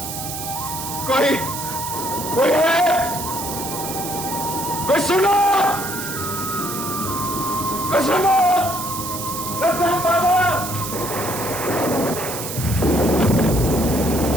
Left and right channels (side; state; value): right; noise; hiss, 7 dB below the sound